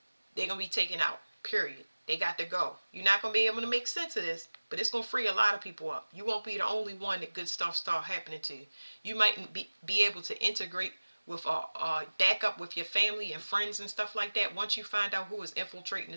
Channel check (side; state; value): both; inverted; correlation -1.00